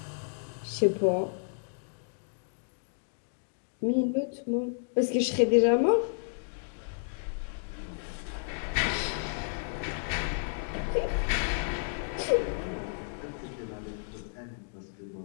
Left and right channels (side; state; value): right; silent; digital silence